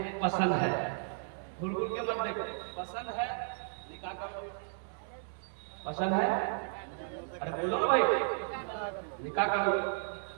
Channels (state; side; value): silent; left; digital silence